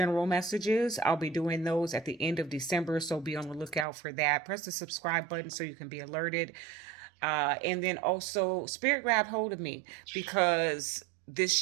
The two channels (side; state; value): left; drops out; at 3.9 s